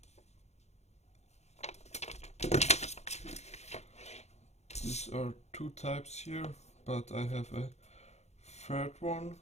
These are two types here, but I have a third one.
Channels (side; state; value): right; late; 0.32 ms